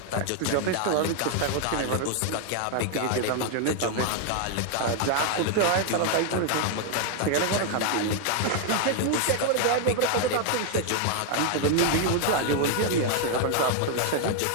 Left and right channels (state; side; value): different; both; correlation 0.00